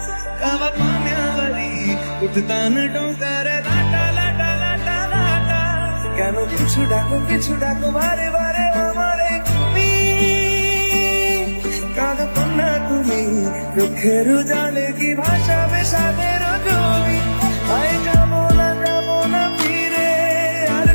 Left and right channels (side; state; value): both; inverted; correlation -1.00